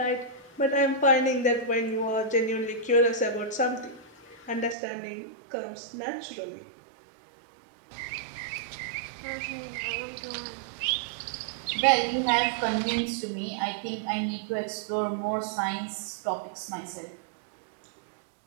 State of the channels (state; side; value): drops out; left; at 4.8 s